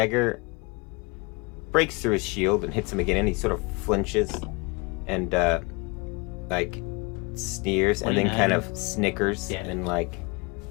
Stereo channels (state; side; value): quieter; right; 28.5 dB